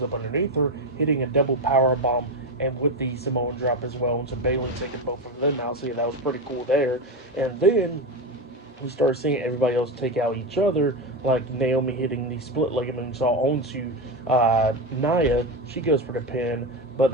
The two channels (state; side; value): normal; both; correlation 0.16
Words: up underneath her, hitting a double power bomb, and with the Samoan drop as well into Bayley, taking both of them out. So yeah, that was pretty cool there. And then we start seeing everybody else take out each other, like Naomi hitting the split ligament saw onto Nia. She goes for the pin, but